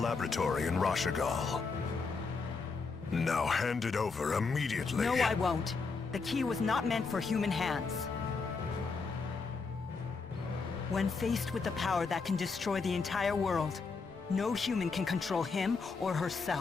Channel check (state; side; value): quieter; right; 4.6 dB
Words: in Rashagal. Now hand it over immediately. No, I won't. The key was not meant for human hands. When faced with the power that can destroy the entire world, no human can control him or